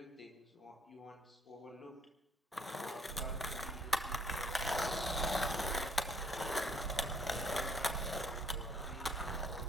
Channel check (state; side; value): normal; both; correlation 0.64